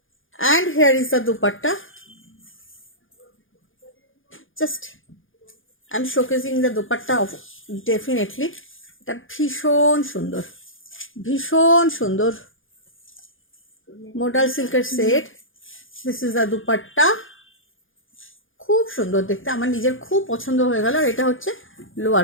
and here is the dupatta. Just I'm showcasing the dupatta of definitely. এটা ভীষণ সুন্দর, ভীষণ সুন্দর মোডাল সিল্কের set. This is the dupatta, খুব সুন্দর দেখতে, আমার নিজের খুব পছন্দ হয়ে গেল। আর এটা হচ্ছে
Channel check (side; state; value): right; late; 0.58 ms